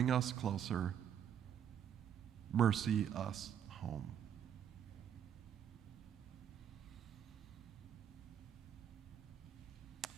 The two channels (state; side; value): quieter; left; 9.1 dB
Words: us closer. Mercy us home.